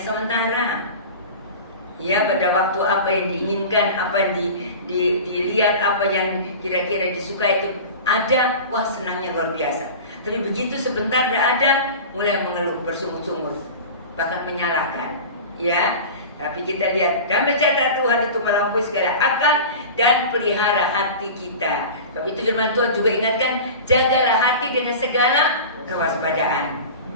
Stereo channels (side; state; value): both; inverted; correlation -0.34